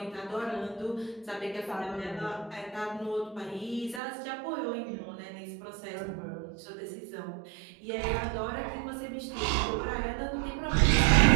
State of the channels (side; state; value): left; drops out; at 4.0 s